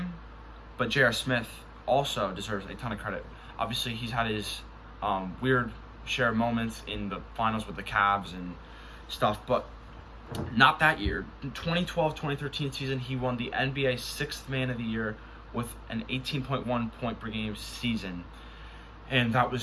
but J.R. Smith also deserves a ton of credit. Obviously, he's had his weird share of moments in the finals with the Cavs and stuff, but not that year. In 2012-2013 season, he won the NBA 6th Man of the Year with an 18.1 point per game season, and that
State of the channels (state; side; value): identical; both; correlation 1.00